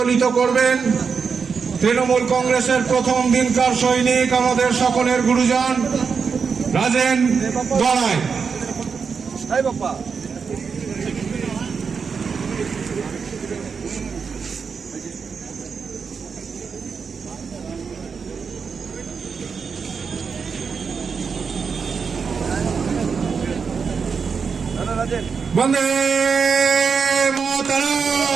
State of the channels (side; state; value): left; quieter; 5.7 dB